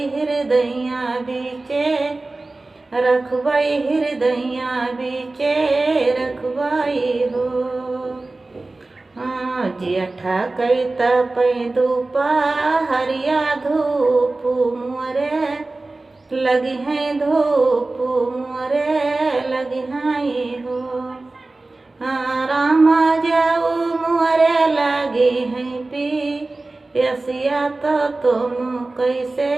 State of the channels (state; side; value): quieter; left; 3.2 dB